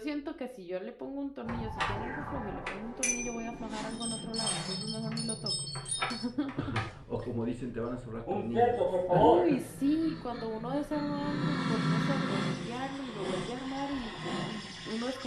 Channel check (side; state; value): both; identical; correlation 1.00